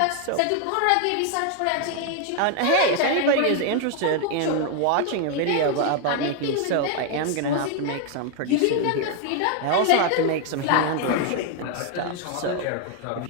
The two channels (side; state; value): both; different; correlation 0.00